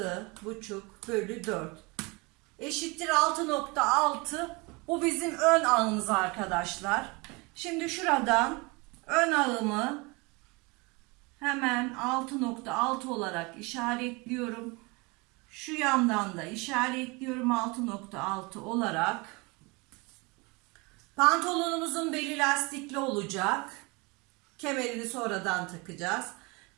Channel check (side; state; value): left; quieter; 27.0 dB